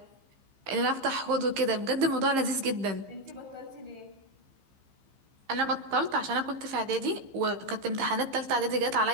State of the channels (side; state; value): left; late; 15 ms